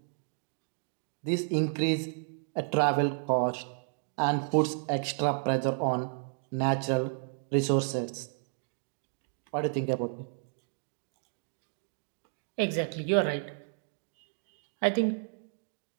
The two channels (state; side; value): silent; left; 56 dB below the other